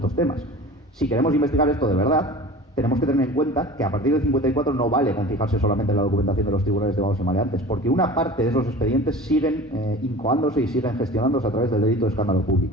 temas. Si queremos investigar esto de verdad, tenemos que tener en cuenta que a partir del 54 no vale con fijarse solamente en la documentación de los tribunales de vagos y maleantes, porque una parte de esos expedientes siguen incoándose y siguen gestionándose a través del delito de escándalo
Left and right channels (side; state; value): both; normal; correlation 0.39